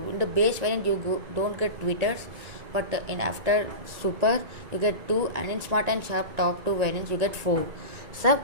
the base variant you don't get tweeters, but in after super you get 2, and in smart and sharp top 2 variants you get 4.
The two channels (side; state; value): left; late; 1.9 ms